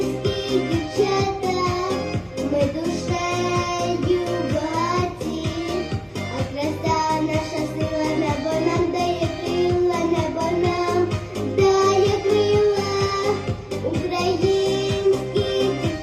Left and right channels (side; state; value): both; identical; correlation 1.00